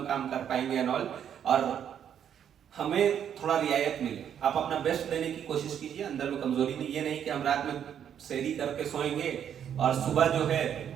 काम कर पाएंगे एंड ऑल, और हमें थोड़ा रियायत मिले। आप अपना बेस्ट देने की कोशिश कीजिए, अंदर में कमजोरी नहीं। ये नहीं कि हम रात में सेहरी करके सोएंगे और सुबह जो है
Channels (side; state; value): left; quieter; 9.0 dB